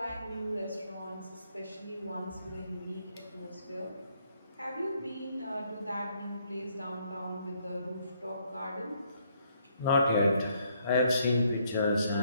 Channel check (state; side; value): inverted; both; correlation -0.70